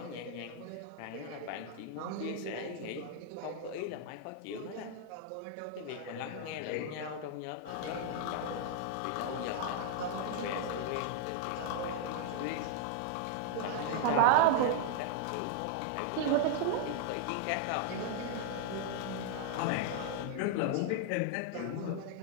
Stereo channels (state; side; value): different; both; correlation -0.01